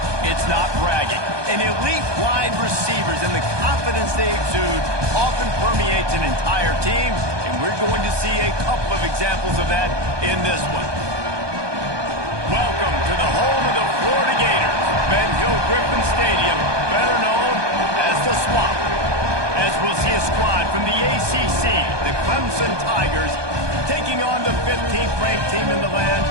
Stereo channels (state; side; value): late; left; 1.2 ms